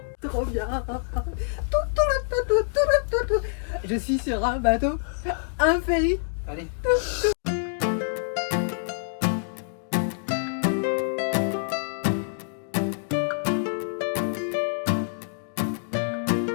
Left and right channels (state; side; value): silent; right; digital silence